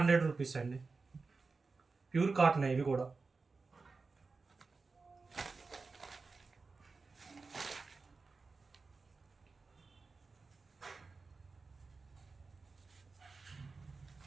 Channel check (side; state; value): left; quieter; 4.2 dB